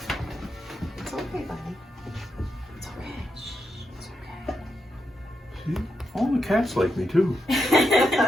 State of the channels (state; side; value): normal; both; correlation 0.84